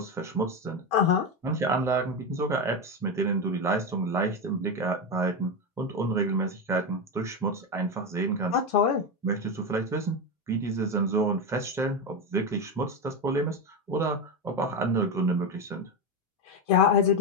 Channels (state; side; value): normal; both; correlation 0.14